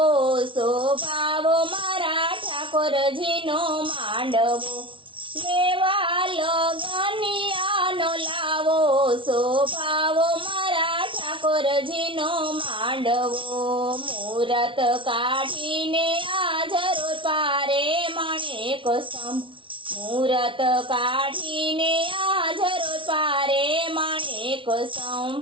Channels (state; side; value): late; left; 0.25 ms